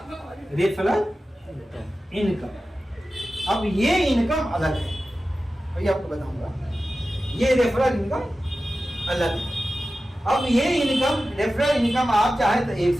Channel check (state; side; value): normal; both; correlation 0.94